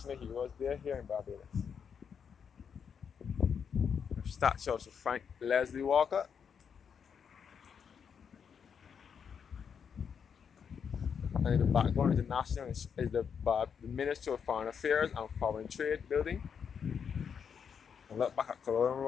Heroes Day here in Barbados. A statue of Sir Frank Leslie Walker. And in the background is the Ministry of Foreign Affairs and Foreign Trade building. And look back at Culloden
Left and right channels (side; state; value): right; quieter; 7.0 dB